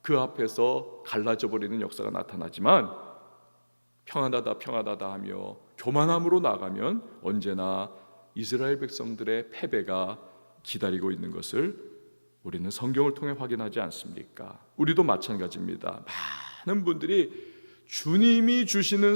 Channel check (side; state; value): both; inverted; correlation -1.00